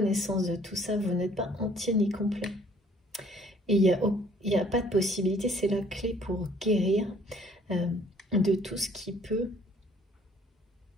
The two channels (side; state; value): both; normal; correlation 0.58